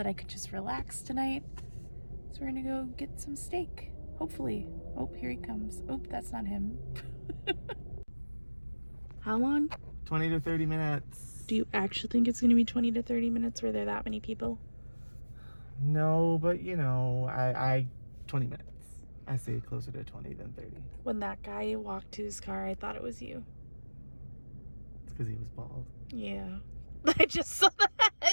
I could just relax tonight. So we're gonna go get some steak, hopefully. Oh, here he comes. Oh, that's not him. How long? 20 to 30 minutes. Do you actually think it's gonna be 20 to 30 minutes? Were there that many people? No, but I 20 minutes. I say closer to 20 than 30. When that guy walked to his car, I thought it was you. It's because he was bald. Yeah. I just saw that.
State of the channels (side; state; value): both; inverted; correlation -1.00